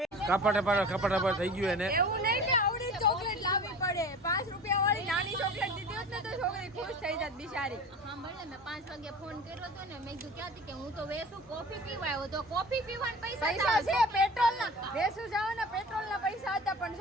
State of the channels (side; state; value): both; normal; correlation 0.38